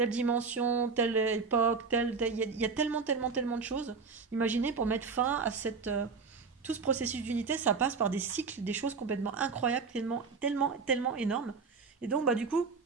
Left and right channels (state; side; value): quieter; left; 5.0 dB